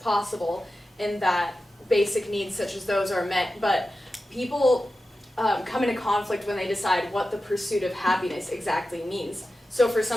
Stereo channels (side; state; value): both; normal; correlation 0.93